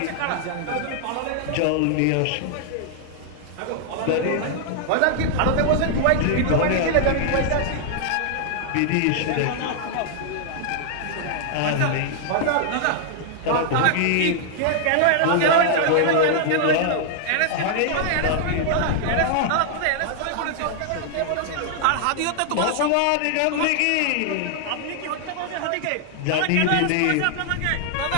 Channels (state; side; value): different; both; correlation -0.01